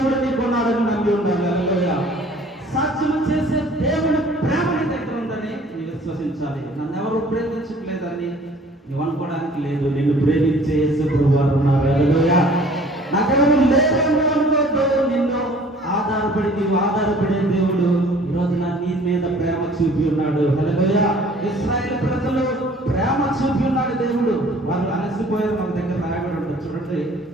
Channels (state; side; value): normal; both; correlation 0.52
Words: నీకున్నాడని నమ్మి ఉండాలి. హల్లెలూయా. సాధ్యం చేసే దేవుని ప్రేమ నీ దగ్గర ఉందని నీవు విశ్వసించాలి. నన్ను ఎవరు ప్రేమించట్లేదని నువ్వు అనుకోవడానికి లేదు. నిన్ను ప్రేమించే యేసు ప్రభువారు ఉన్నారు. హల్లెలూయా. నాకెవరు లేదని అనుకోవద్దు. నిన్ను ఆధారపడి నీవు ఆధారపడే దేవుడు ఈరోజు నీ మీద ప్రేమ చూపి ఉన్నాడు. హల్లెలూయా. ఇశ్రాయేలు ప్రజలు ప్రేమ చూపి ఉన్నాడు దేవుడు. వాళ్ళు అలసిపోయారు. మన దగ్గర రాయబడి ఉంటుంది చూడండి.